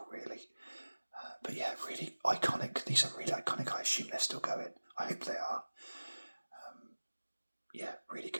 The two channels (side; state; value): both; inverted; correlation -1.00